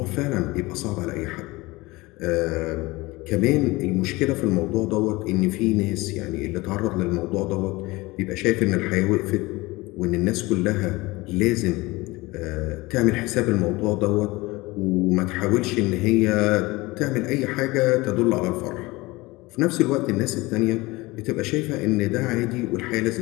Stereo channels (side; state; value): right; quieter; 21.8 dB